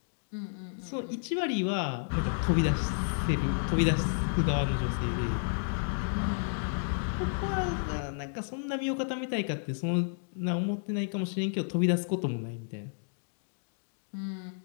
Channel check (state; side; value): silent; right; digital silence